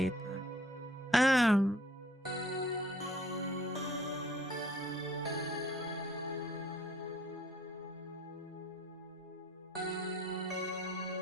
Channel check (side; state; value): both; normal; correlation 0.58